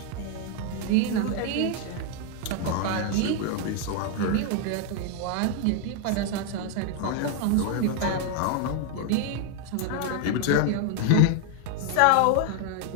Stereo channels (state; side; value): different; both; correlation 0.00